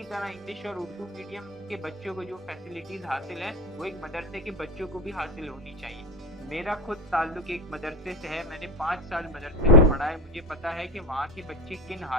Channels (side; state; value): both; normal; correlation 0.18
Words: तरह इंग्लिश और उर्दू मीडियम के बच्चों को जो फैसिलिटीज हासिल है वो एक मदरसे के बच्चों को भी हासिल होनी चाहिए। मेरा खुद ताल्लुक एक मदरसे से है, मैंने 5 साल मदरसे में पढ़ा है, मुझे पता है कि वहाँ के बच्चे किन